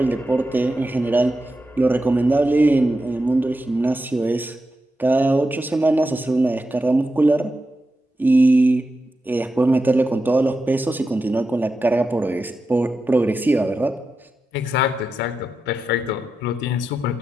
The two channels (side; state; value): both; normal; correlation 0.89